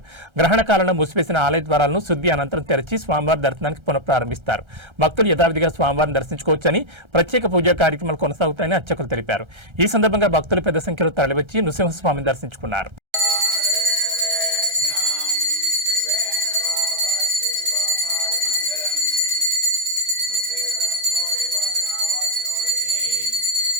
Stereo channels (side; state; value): left; late; 1.3 ms